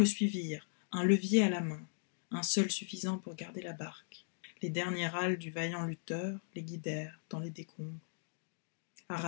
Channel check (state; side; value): silent; right; digital silence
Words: suivirent, un levier à la main, un seul suffisant pour garder la barque. Les derniers râles du vaillant lutteur les guidèrent dans les décombres.